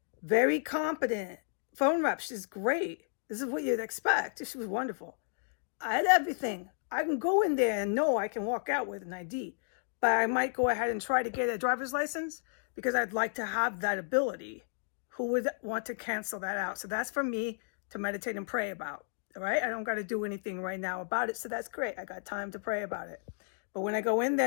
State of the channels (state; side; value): silent; right; digital silence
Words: Very competent phone rep. She's great. This is what you'd expect. She was wonderful. I had everything. I can go in there and know I can walk out with an ID. But I might go ahead and try to get a driver's license because I'd like to have that ability. Who would want to cancel that out? So that's for me to meditate and pray about. All right? I don't got to do anything right now about it. So that's great. I got time to pray about it. But when I go in